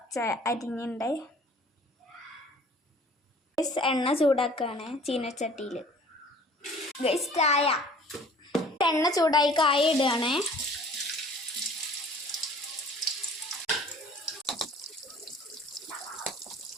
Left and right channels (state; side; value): normal; both; correlation 0.50